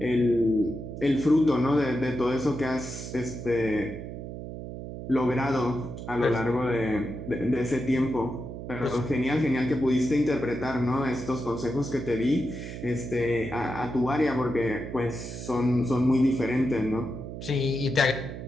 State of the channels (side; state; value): right; noise; hum, 9 dB below the sound